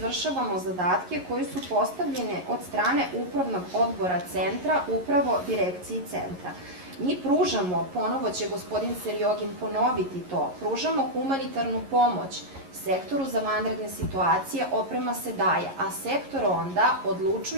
zadatke koji su postavljene od strane Upravnog odbora centra, upravo direkciji centra. Mi pružamo, ponovo će gospodin Serjogin ponoviti to, pružamo humanitarnu pomoć sektoru za vanredne situacije, oprema se daje, a sektor onda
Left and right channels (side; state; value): left; late; 11 ms